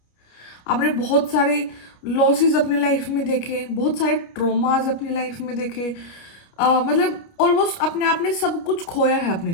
आपने बहुत सारे लॉसेस अपनी लाइफ में देखे, बहुत सारे ट्रोमास अपनी लाइफ में देखे। मतलब ऑलमोस्ट अपने आप ने सब कुछ खोया है अपनी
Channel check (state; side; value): late; right; 29 ms